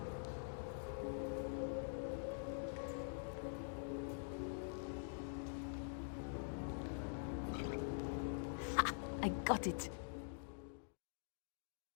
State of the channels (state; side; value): silent; right; digital silence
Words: I got it.